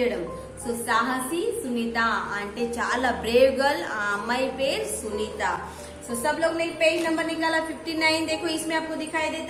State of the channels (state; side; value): identical; both; correlation 1.00